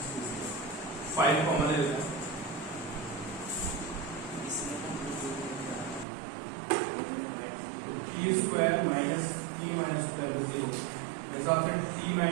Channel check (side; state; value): left; drops out; at 6.1 s